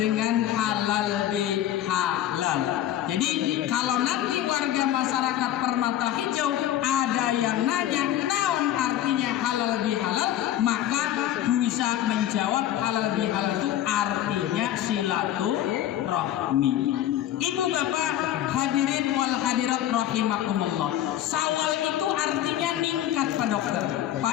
halal bihalal. Jadi kalau nanti warga masyarakat Permata Hijau ada yang nanya naon artinya halal bihalal, maka bisa menjawab halal bihalal itu artinya silaturahmi. Ibu bapak hadirin wal hadirat rahimakumullah. Syawal itu artinya ningkat Pak Dokter,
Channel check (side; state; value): right; quieter; 12.1 dB